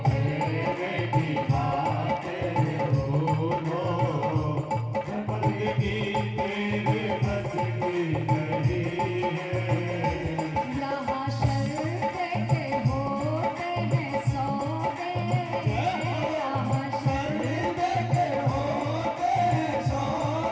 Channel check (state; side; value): identical; both; correlation 1.00